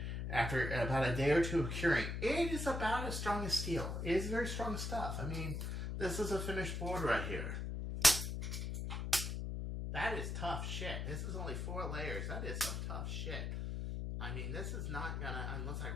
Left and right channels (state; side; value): noise; left; hum, 3 dB below the sound